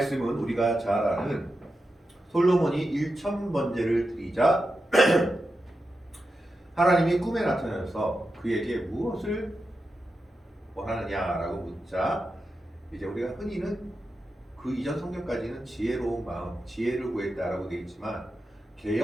우리가 잘 아는 솔로몬이 1000번제를 드리자 하나님이 꿈에 나타나서 그에게 무엇을 원하느냐라고 묻자 이제 우리가 흔히는 그 이전 성경까지는 지혜로운 마음, 지혜를 구했다라고 되어 있지만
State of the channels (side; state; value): both; normal; correlation 0.90